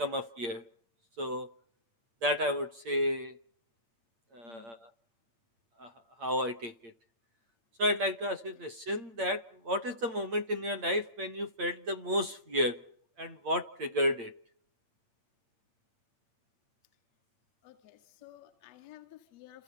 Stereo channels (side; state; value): left; late; 8.7 ms